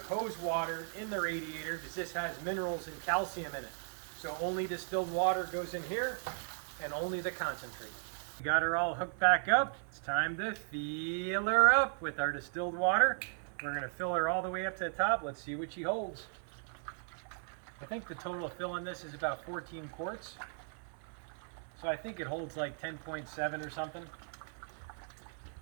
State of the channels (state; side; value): silent; left; 53 dB below the other